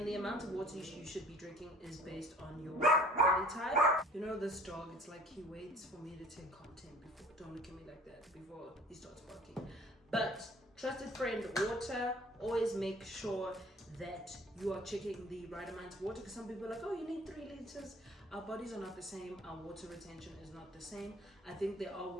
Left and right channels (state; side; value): normal; both; correlation 0.50